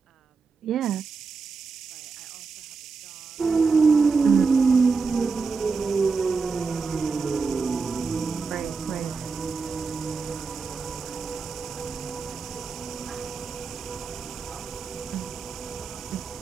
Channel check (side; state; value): left; quieter; 4.7 dB